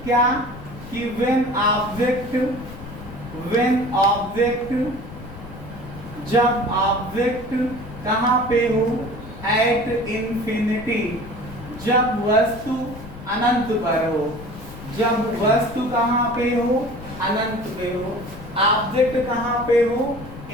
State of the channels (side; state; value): left; noise; rumble, 14 dB below the sound